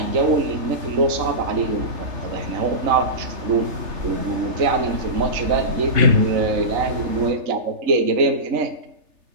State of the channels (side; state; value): left; late; 3.4 ms